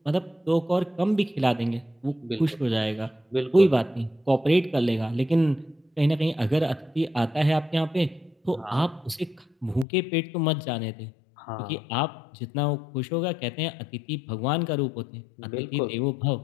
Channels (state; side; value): drops out; right; at 9.9 s